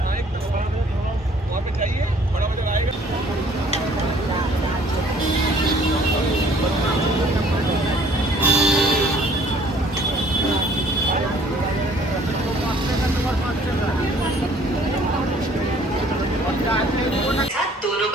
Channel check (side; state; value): both; normal; correlation 0.57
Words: हाँ, एक वहाँ पे चाहिए, बड़ा बाजार आएगा। दोनों